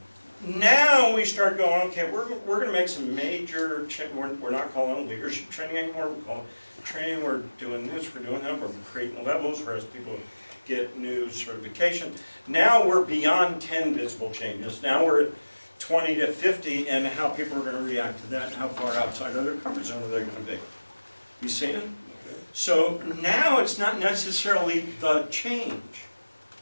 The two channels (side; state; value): both; inverted; correlation -1.00